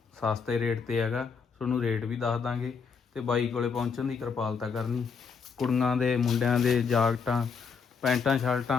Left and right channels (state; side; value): quieter; right; 5.7 dB